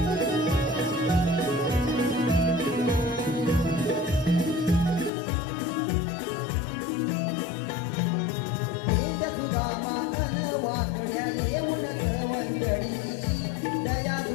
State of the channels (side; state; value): right; drops out; at 5.1 s